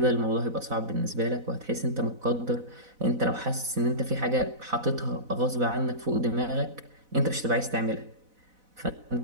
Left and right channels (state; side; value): late; left; 4.0 ms